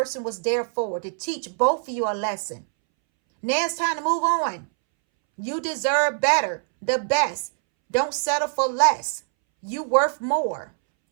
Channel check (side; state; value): left; silent; 63 dB below the other